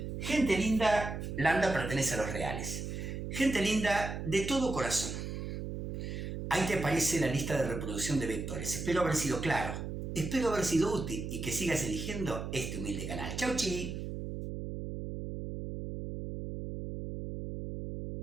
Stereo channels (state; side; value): noise; right; hum, 5 dB below the sound